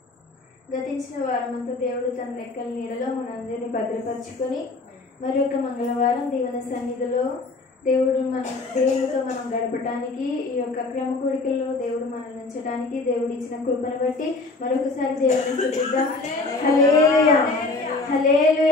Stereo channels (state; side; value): quieter; right; 3.5 dB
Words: గతించిన వారమంతా దేవుడు తన రెక్కల నీడలో మనందరినీ భద్రపరుచుకొని మరి ఒక మంగళవారం దేవుని సన్నిధిలో దేవుడితో మనం గడపడానికి ఈ యొక్క క్రమ కూడికల్లో దేవుడు మనల్ని ఉంచడానికి దేవుడు ఇచ్చిన కృపను బట్టి మరొకసారి దేవుని స్తుతిద్దాం. హల్లెలూయా,